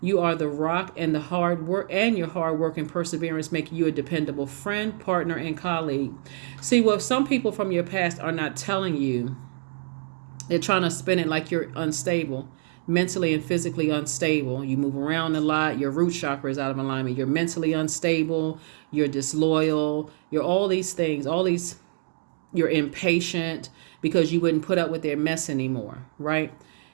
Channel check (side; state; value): left; silent; digital silence